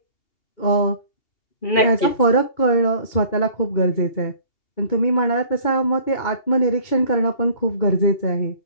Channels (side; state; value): right; late; 2.8 ms